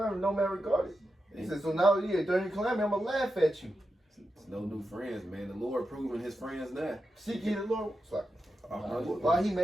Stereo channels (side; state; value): both; normal; correlation 0.89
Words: no man regarded. He said, so now, during your calamity, I'm going to laugh at you. It's no new friends, man. The Lord proving his friends now. Seek ye the Lord. It's like, Uh-huh. why he